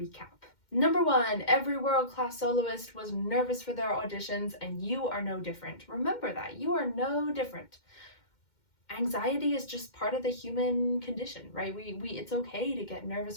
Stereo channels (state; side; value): late; right; 2.1 ms